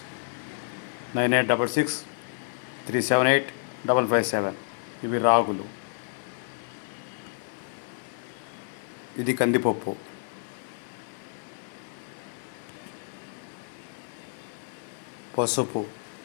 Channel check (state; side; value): silent; right; digital silence